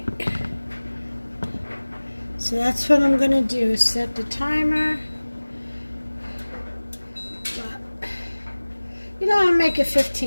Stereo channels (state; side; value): inverted; both; correlation -1.00